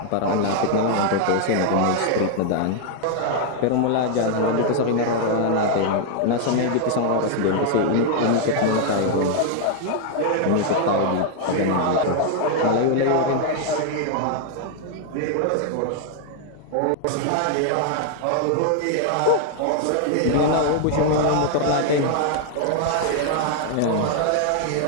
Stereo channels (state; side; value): different; both; correlation 0.00